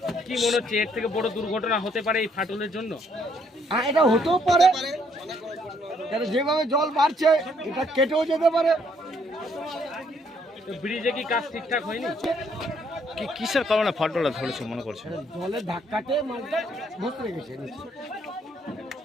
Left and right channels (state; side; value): normal; both; correlation 0.68